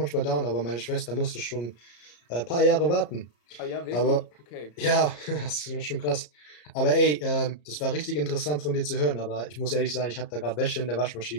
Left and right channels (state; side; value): late; right; 34 ms